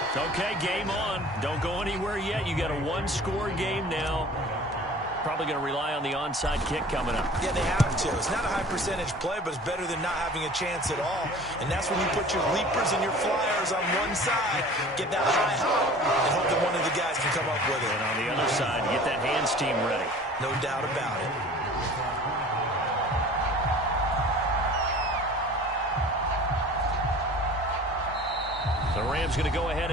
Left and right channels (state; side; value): normal; both; correlation 0.44